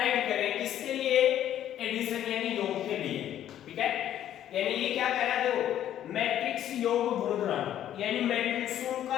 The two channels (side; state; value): right; quieter; 11.3 dB